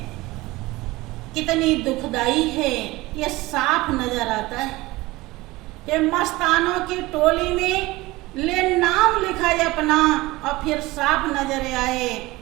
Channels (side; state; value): left; quieter; 20.2 dB